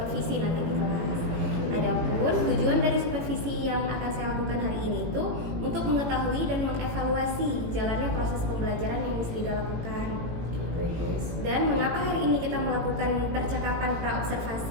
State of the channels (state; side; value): late; left; 18 ms